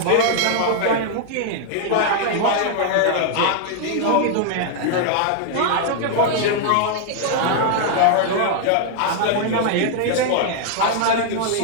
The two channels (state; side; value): different; both; correlation 0.00